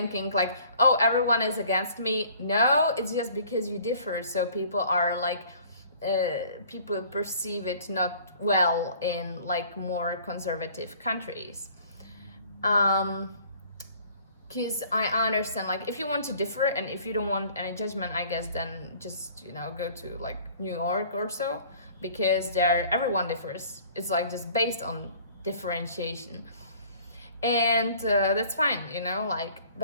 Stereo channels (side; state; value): both; inverted; correlation -0.52